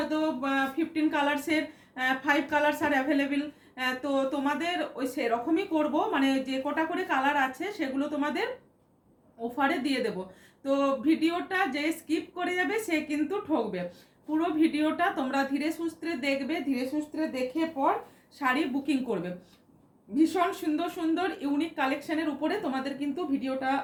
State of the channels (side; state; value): both; identical; correlation 1.00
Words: 15 কালার্সের 5 কালার্স আর অ্যাভেলেবেল। তো তোমাদের ওই সেরকমই করব, মানে যে কটা করে কালার আছে সেগুলো তোমাদের অফারে দিয়ে দেব। তো ভিডিওটা যে স্কিপ করে যাবে সে কিন্তু ঠকবে। পুরো ভিডিওটা তোমরা ধীরে সুস্থে দেখবে, ধীরে সুস্থে দেখে পর শাড়ি বুকিং করবে। ভীষণ সুন্দর সুন্দর ইউনিক কালেকশনের উপরে তোমাদের কিন্তু ভিডিওটা